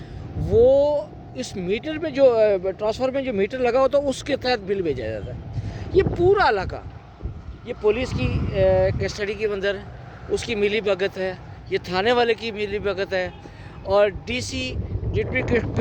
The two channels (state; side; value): identical; both; correlation 1.00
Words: वो इस मीटर में जो ट्रांसफार्मर में जो मीटर लगा होता है उसके तहत बिल भेजा जाता है। ये पूरा इलाका, ये पुलिस की कस्टडी के अंदर उसकी मिली भगत है, ये थाने वाले की मिली भगत है, और डीसी डिप्टी